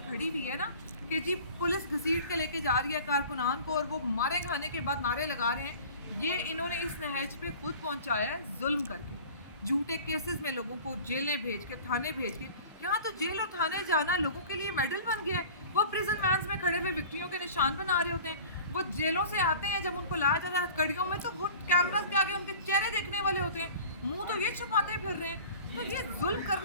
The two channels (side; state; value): both; inverted; correlation -0.43